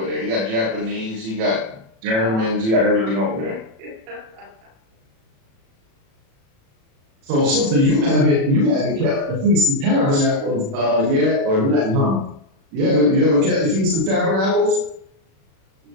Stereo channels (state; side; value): late; left; 36 ms